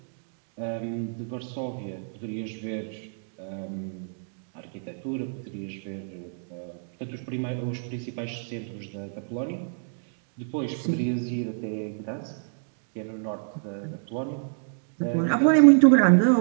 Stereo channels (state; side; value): silent; left; digital silence